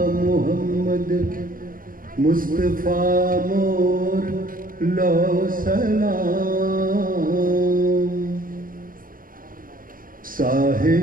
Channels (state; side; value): late; left; 0.41 ms